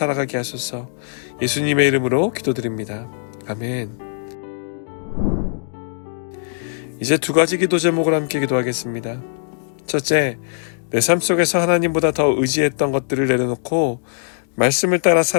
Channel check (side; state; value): right; silent; digital silence